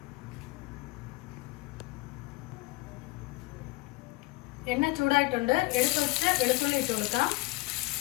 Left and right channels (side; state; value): right; quieter; 23.1 dB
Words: എണ്ണ ചൂടായിട്ടുണ്ട്. എടുത്ത് വെച്ച് വെളുത്തുള്ളി ഇട്ട് കൊടുക്കാം.